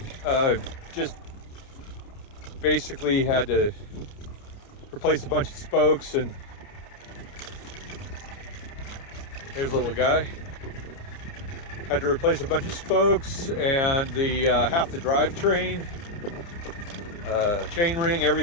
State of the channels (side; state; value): right; late; 29 ms